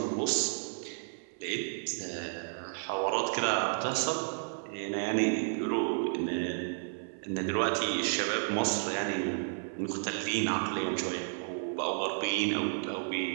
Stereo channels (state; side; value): silent; left; 56 dB below the other